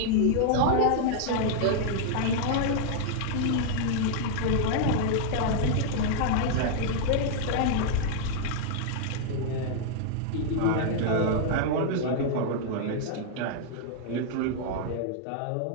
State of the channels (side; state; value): both; different; correlation -0.01